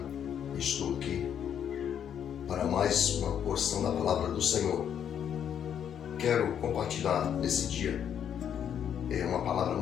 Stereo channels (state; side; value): quieter; right; 9.0 dB